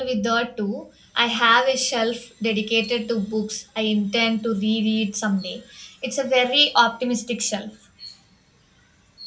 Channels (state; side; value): identical; both; correlation 1.00